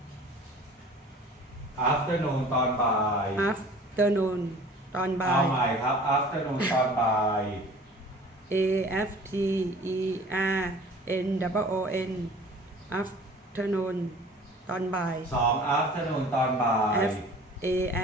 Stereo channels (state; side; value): normal; both; correlation 0.46